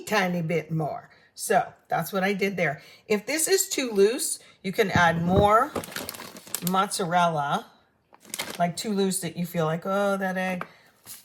tiny bit more. So that's what I did there. If this is too loose, you can add more mozzarella, like too loose that you feel like, oh, that egg,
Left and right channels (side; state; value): both; identical; correlation 1.00